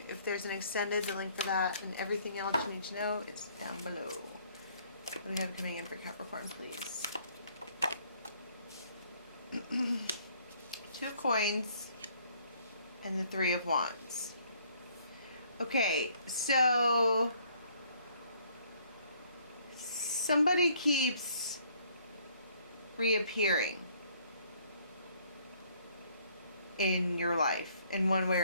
If there's an extended, the link for that and everything else you need to know is down below. What do we have coming in for Capricorn, please? 2 of coins and the 3 of wands. Okay, so somebody keeps reappearing in your life in one way or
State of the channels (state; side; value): inverted; both; correlation -0.63